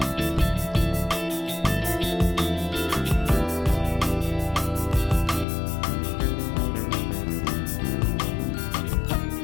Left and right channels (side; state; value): right; drops out; at 5.5 s